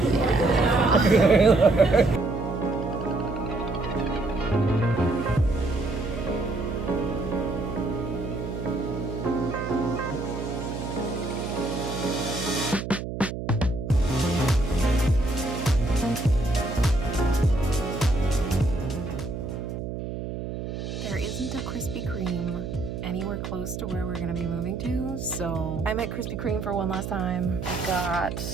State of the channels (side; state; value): right; noise; hum, 6 dB below the sound